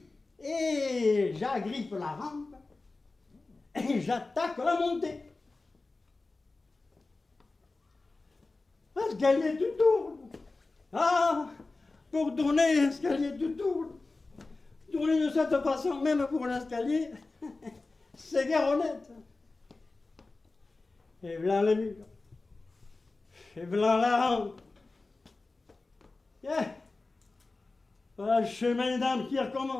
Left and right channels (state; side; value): quieter; right; 3.5 dB